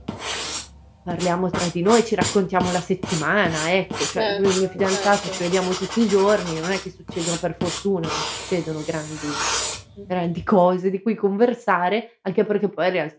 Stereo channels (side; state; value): both; identical; correlation 1.00